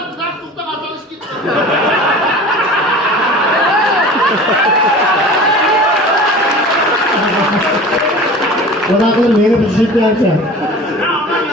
kızar tuttu kazanış gitti. Bırakın beni düşük dersen. Ya aman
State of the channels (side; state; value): both; normal; correlation 0.39